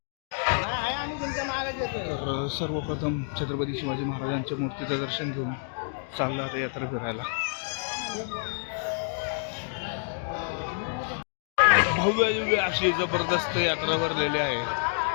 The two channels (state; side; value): silent; right; 59 dB below the other